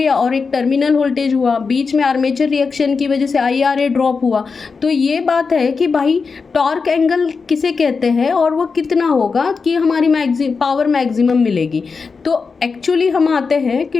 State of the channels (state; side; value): quieter; right; 4.9 dB